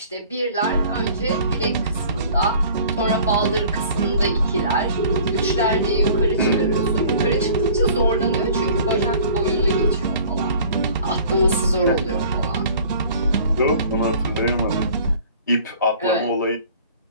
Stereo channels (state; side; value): inverted; both; correlation -0.49